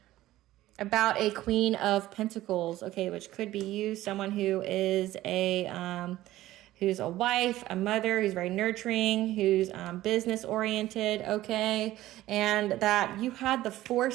about a Queen of Pentacles, okay, which could be you, someone who is who's a wife, a mother, who's very nurturing, who's business oriented, okay, and that you had the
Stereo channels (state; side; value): quieter; left; 15.4 dB